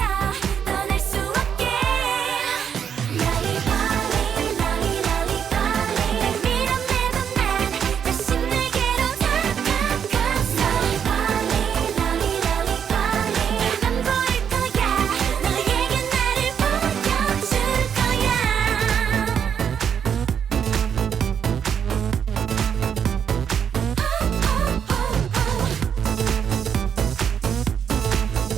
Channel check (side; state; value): left; quieter; 7.9 dB